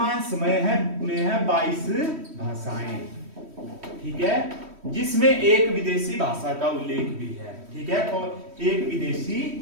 समय है में है 22 भाषाएं, ठीक है, जिसमें एक विदेशी भाषा का उल्लेख भी है, ठीक है, और एक विदेशी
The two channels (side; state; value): left; late; 3.1 ms